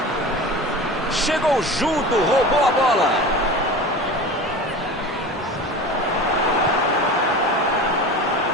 Chegou junto, roubou a bola.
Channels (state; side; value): normal; both; correlation 0.33